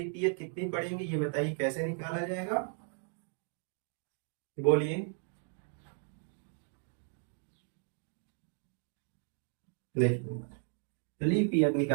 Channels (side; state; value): left; silent; 54 dB below the other